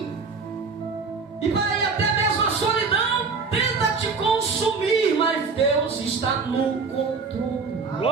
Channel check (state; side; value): quieter; left; 4.8 dB